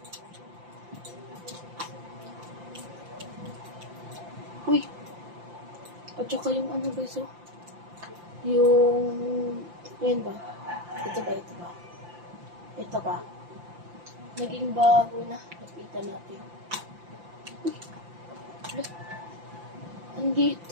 Uy! At saka yung ano guys, oh. Yung... Ayan ba? Ito ba? Ito ba? Naging bago na. Lapitan natin. Uy!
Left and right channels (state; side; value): late; left; 5.8 ms